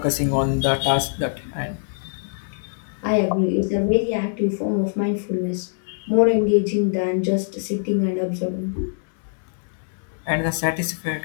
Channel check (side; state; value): right; silent; 63 dB below the other